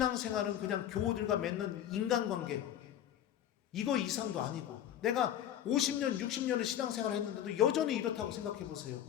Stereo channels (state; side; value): quieter; right; 10.9 dB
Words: 그냥 교우들과 맺는 인간관계 이거 이상도 아니고 내가 50년 60년을 신앙생활을 했는데도 여전히 이렇다고 생각해 보세요.